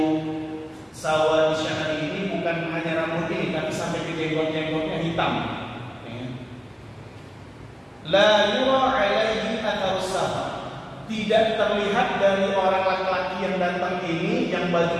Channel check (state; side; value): identical; both; correlation 1.00